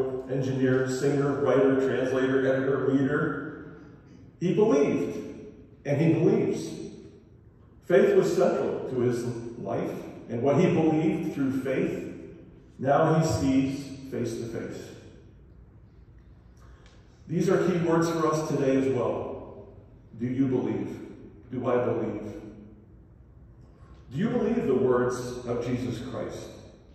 engineer, singer, writer, translator, editor, leader, he believed, and he believes. Faith was central to his life, and what he believed through faith, now he sees face to face. These are key words for us today as well. Do you believe? Do I believe? Do you believe the words of Jesus Christ?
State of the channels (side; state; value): both; identical; correlation 1.00